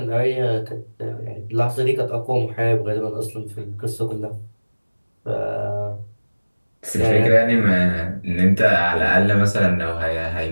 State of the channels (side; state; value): both; inverted; correlation -1.00